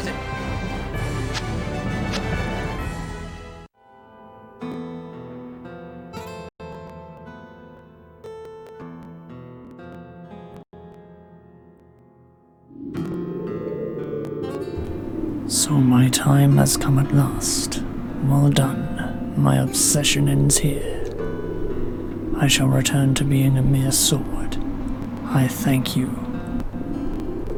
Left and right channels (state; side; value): identical; both; correlation 1.00